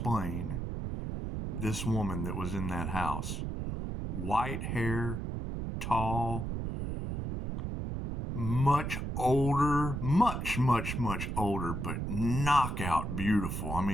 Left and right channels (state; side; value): noise; right; rumble, 3 dB below the sound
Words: this woman that was in that house. White hair, tall, much older, much older, but knockout beautiful. I